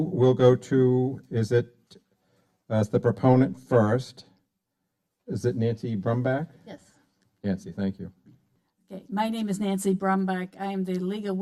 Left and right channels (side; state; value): both; identical; correlation 1.00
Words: we'll go to, is it, as the proponent first, is it Nancy Brumbach? Yes. Nancy, thank you. Okay, my name is Nancy Brumbach. I am the League of